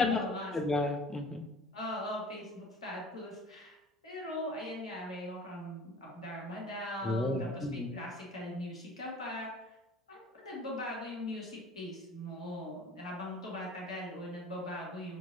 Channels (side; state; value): both; normal; correlation 0.46